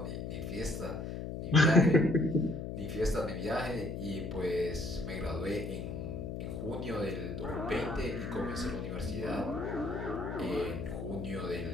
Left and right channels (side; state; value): left; noise; hum, 5 dB below the sound